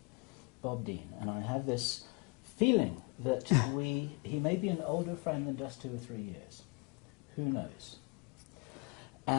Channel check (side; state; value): right; quieter; 31.6 dB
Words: Bob Dien. And I have this feeling that he may be an older friend than just 2 or 3 years. Who knows?